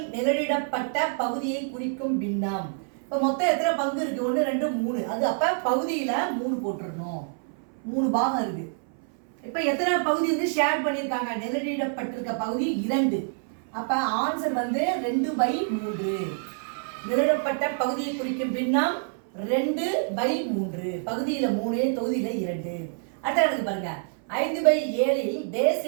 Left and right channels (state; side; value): silent; left; 58 dB below the other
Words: நிழலிடப்பட்ட பகுதியை குறிக்கும் பின்னம். இப்போ மொத்தம் எத்தனை பங்கு இருக்கு? 1, 2, 3. அது அப்போ பகுதியில் 3 போட்டுருணும். 3 பாகம் இருக்கு. இப்போ எத்தனை பகுதி வந்து ஷேர் பண்ணியிருக்காங்க? நிழலிடப்பட்டிருக்க பகுதி 2. அப்போ ஆன்சர் வந்து 2/3. நிழலிடப்பட்ட பகுதியை குறிக்கும் பின்னம் 2/3. பகுதியில் 3, தொகுதியில் 2. அடுத்த பாருங்க. 5/7 டேஸ்